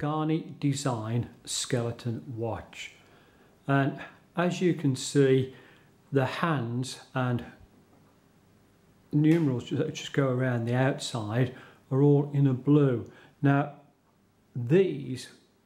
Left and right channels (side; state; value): both; identical; correlation 1.00